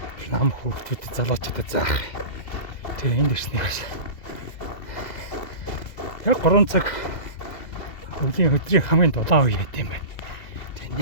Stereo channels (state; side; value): late; right; 1.9 ms